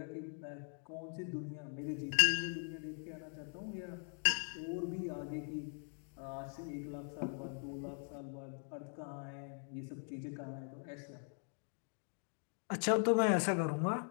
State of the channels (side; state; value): right; silent; 50 dB below the other